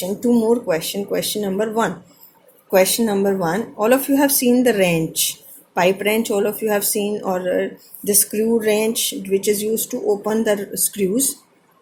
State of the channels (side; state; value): both; identical; correlation 1.00